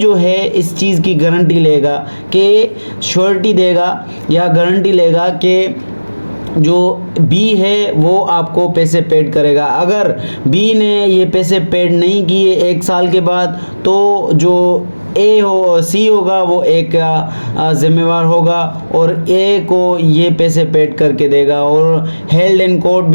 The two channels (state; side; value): inverted; both; correlation -1.00